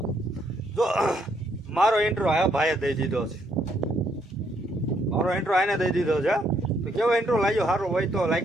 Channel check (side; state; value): both; normal; correlation 0.72